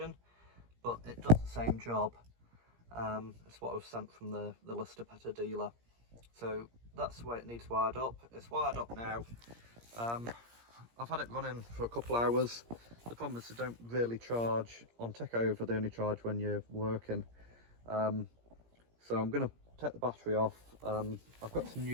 but it does the same job. It's what I was sent from the Lister Petter dealer. So that's the way it needs wired up. It's wired up now. I've had it running for a couple hours. The problem is they don't really charge on takeover, they only charge when you're working. So I'm going to take the battery off. I've got some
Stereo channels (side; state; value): left; late; 17 ms